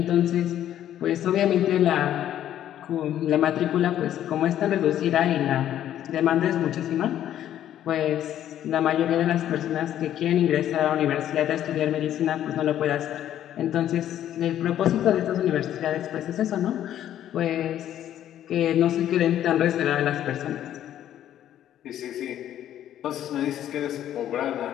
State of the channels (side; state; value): right; quieter; 11.4 dB